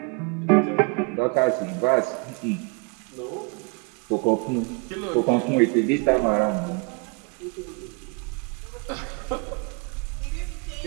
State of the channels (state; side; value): quieter; left; 30.8 dB